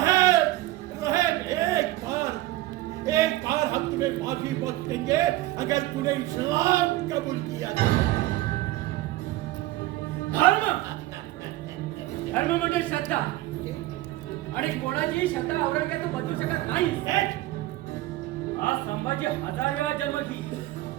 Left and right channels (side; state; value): left; quieter; 17.1 dB